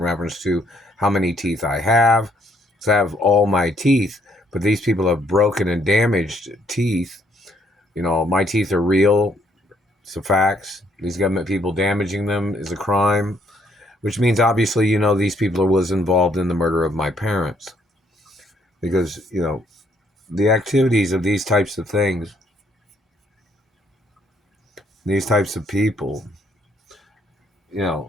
to how many teeth I have. So I have all my teeth, but these people have broken and damaged teeth. My teeth are real. It's a facts. These government people damaging them is a crime, which means obviously, these people was involved in the murder of my parents. Because, the activities of these types of things, these types of people,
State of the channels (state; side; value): normal; both; correlation 0.68